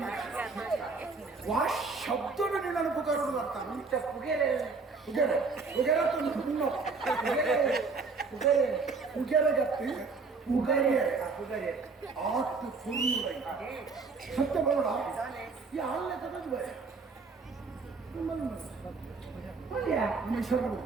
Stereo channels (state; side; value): quieter; left; 4.4 dB